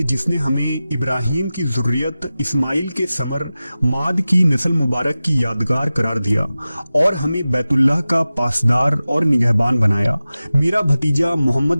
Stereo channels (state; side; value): inverted; both; correlation -0.95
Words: जिसने हमें इब्राहिम की ज़ुर्रियत, इस्माइल के समर, माद की नस्ल मुबारक की यादगार करार दिया और हमें बैतुल्लाह का पासदार और निगहबान बनाया। मेरा भतीजा मोहम्मद